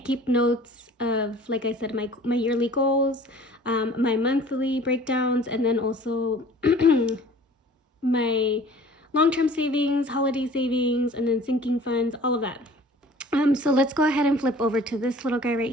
keep notes of, like I said, my yearly goals, my monthly breakdowns, and then also my long-term savings, holiday savings, and then sinking funds, all of that. So let's go ahead and flip over to this little guy right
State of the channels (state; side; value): normal; both; correlation 0.48